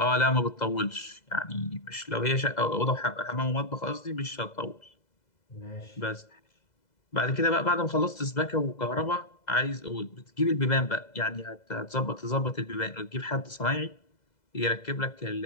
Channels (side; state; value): right; late; 2.0 ms